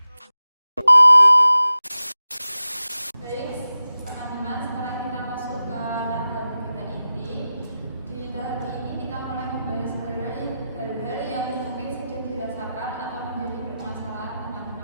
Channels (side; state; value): both; inverted; correlation -0.93